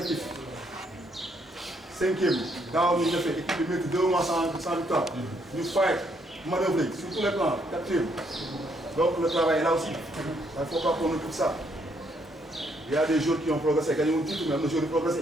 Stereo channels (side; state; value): both; normal; correlation 0.71